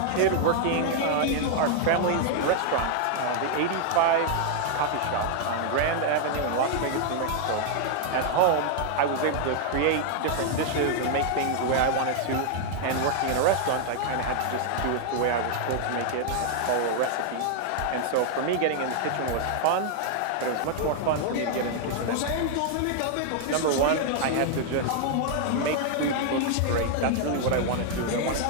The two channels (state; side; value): different; both; correlation 0.00